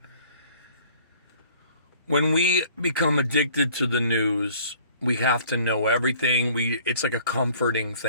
When we become addicted to the news, we have to know everything. It's like a comforting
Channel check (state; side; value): inverted; both; correlation -0.53